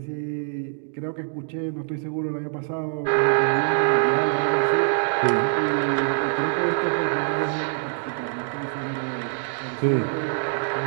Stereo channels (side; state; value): left; silent; digital silence